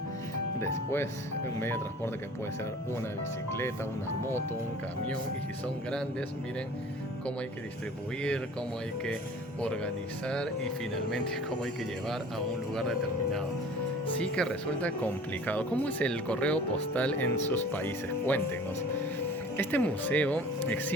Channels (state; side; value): normal; both; correlation 0.45